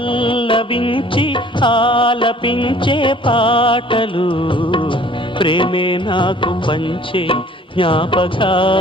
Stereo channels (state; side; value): normal; both; correlation 0.53